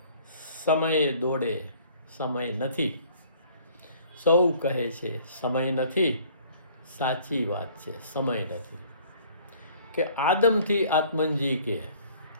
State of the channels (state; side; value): inverted; both; correlation -0.55